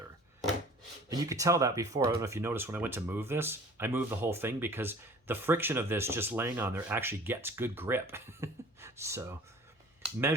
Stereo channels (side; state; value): both; normal; correlation 0.46